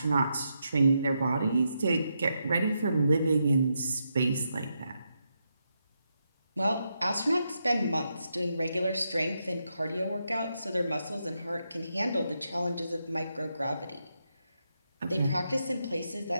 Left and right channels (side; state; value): both; inverted; correlation -0.83